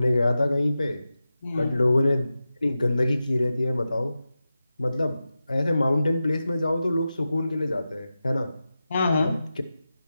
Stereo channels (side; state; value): both; inverted; correlation -0.93